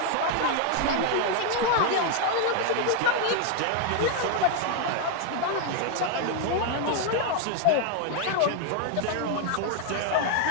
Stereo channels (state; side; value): different; both; correlation 0.00